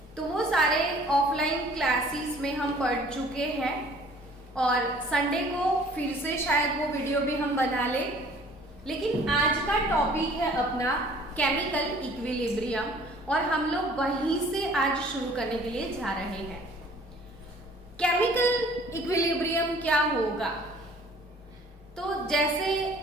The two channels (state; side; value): normal; both; correlation 0.53